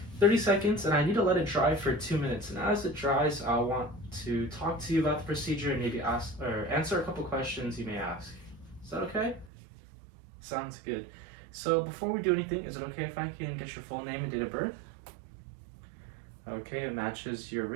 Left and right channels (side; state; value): left; drops out; at 9.5 s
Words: 30 seconds and I need to let it dry for 2 minutes. And as it dries, I want to talk to you about the procedure and maybe answer a couple questions you may ask. Is that okay? Sounds good. So before we do anything, is it okay if I can get your full name and date of birth? Okay, it matches your